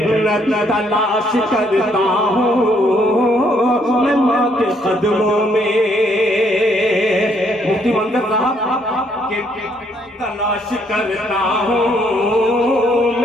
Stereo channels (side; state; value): both; normal; correlation 0.69